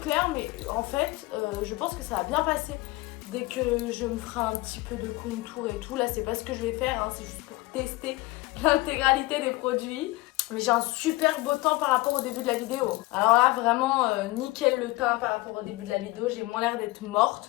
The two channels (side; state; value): right; quieter; 21.1 dB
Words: mais en fait, je pense que ça va bien passer. Dès que je me ferai un petit peu de contour et tout. Là, c'est pas ce que je vais faire. Hein. C'est juste pour tester l'intégralité des produits. Mais j'ai un super beau teint par rapport au début de la vidéo. Alors là, vraiment, nickel le teint par rapport au début de la vidéo. J'ai moins l'air d'être